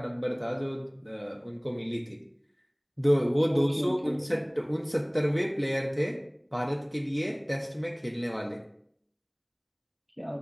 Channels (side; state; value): both; identical; correlation 1.00